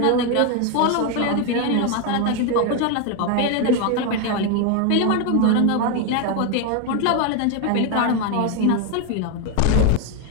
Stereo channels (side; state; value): both; different; correlation 0.02